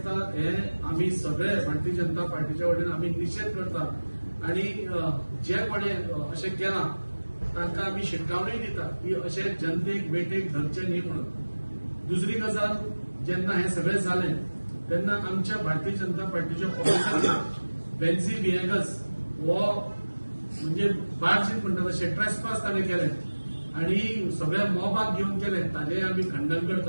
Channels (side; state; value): both; inverted; correlation -1.00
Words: हे आमी सगळे भारतीय जनता पार्टीच्या वतीन आमी निशेध करतात. आनी जे कोणें अशें केलां तांकां आमी शिटकावणी दिता की अशें जनतेक वेटेक धरचें न्ही म्हणून. दुसरी गजाल जेन्ना हे सगळें जालें तेन्ना आमच्या भारतीय जनता पार्टीच्या ऑफिसांत बेन्झी विएगस हो म्हणजे बाळशीत म्हणटा तशें ट्रेसपास ताणें केलें आनी सगळ्या मॉबाक घेवन केलें ताचेंय आमी खंडन